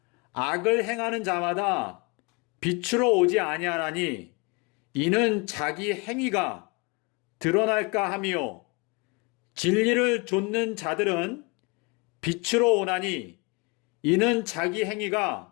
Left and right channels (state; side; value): quieter; right; 29.2 dB